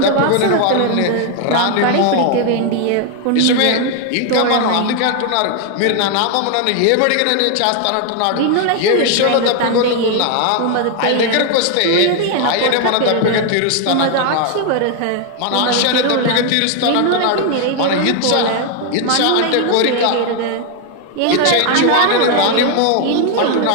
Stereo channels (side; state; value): both; different; correlation 0.00